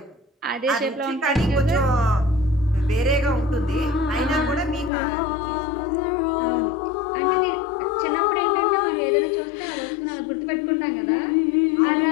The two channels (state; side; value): drops out; right; at 4.9 s